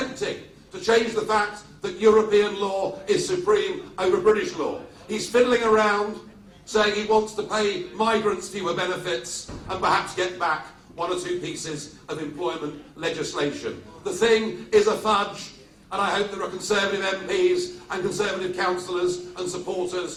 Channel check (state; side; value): identical; both; correlation 1.00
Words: to change the fact that European law is supreme over British law. He's fiddling around, saying he wants to pay migrants fewer benefits and perhaps get back one or two pieces of employment legislation. The thing is a fudge, and I hope there are Conservative MPs and Conservative councillors and